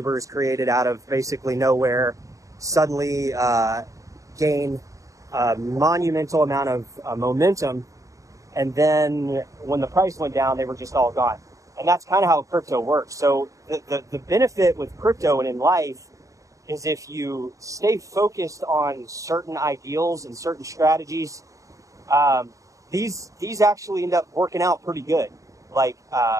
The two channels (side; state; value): left; late; 0.16 ms